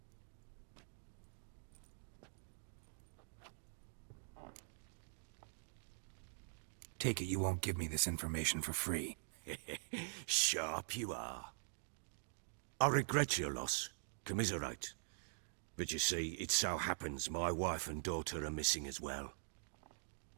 Take it you won't give me this information for free. Sharp you are. I regret your loss. Commiserate. But you see, it so happens my wife and daughter are missing as well.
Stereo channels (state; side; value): silent; left; digital silence